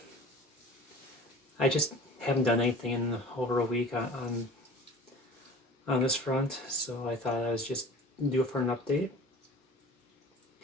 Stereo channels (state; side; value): normal; both; correlation 0.42